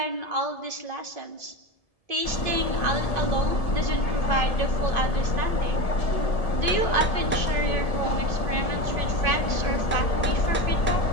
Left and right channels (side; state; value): right; late; 1.7 ms